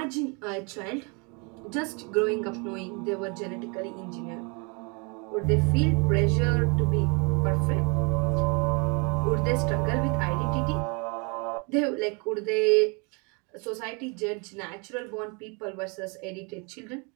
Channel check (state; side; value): quieter; left; 32.5 dB